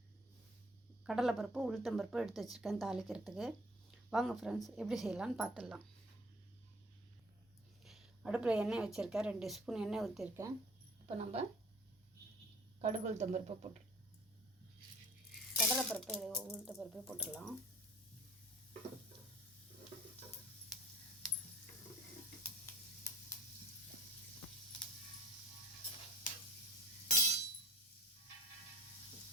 கடலைப்பருப்பு உளுத்தம்பருப்பு எடுத்து வச்சுருக்கேன் தாளிக்கிறதுக்கு. வாங்க ஃப்ரெண்ட்ஸ், எப்படி செய்யலான்னு பார்த்துடலாம். அடுப்பில் எண்ணெய் வச்சுருக்கேன், 2 ஸ்பூன் எண்ணெய் ஊற்றிருக்கேன். இப்போ நம்ம கடுகு உளுத்தம்பருப்பை போட்டுருலாம், கடலைப்பருப்பு உளுத்தம்பருப்பை போட்டுடலாம்.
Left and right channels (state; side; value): normal; both; correlation 0.48